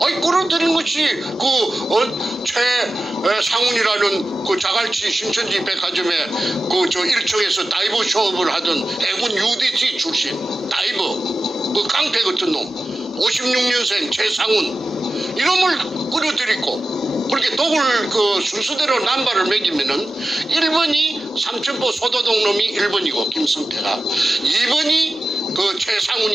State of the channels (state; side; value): normal; both; correlation 0.93